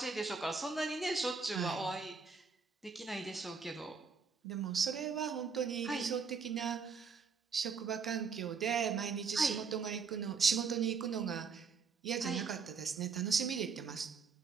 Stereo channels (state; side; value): quieter; left; 5.3 dB